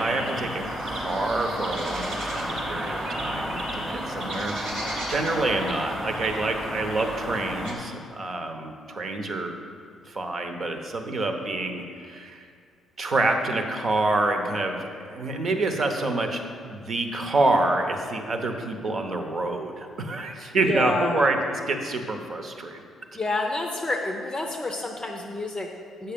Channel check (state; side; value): normal; both; correlation 0.78